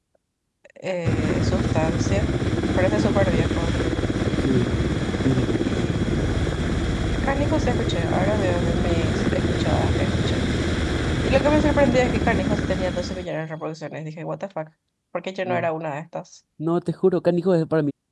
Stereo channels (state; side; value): identical; both; correlation 1.00